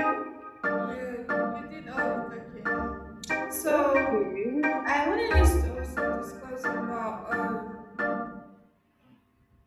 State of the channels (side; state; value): both; identical; correlation 1.00